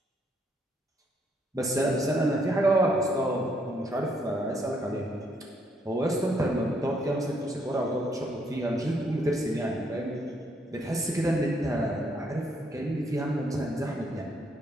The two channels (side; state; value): both; normal; correlation 0.72